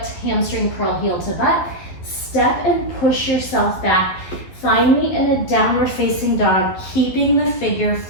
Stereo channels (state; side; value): late; right; 12 ms